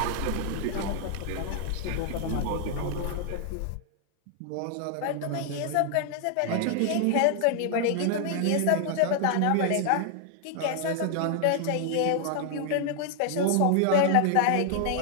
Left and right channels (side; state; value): both; different; correlation 0.00